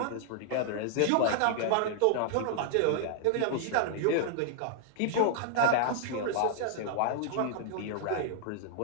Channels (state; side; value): different; both; correlation -0.01